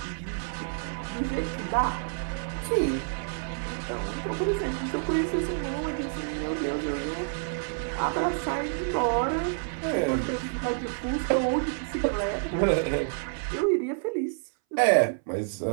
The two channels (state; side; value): silent; left; 59 dB below the other